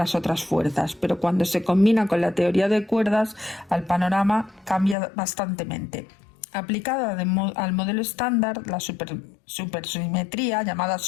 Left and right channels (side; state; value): right; drops out; at 5.0 s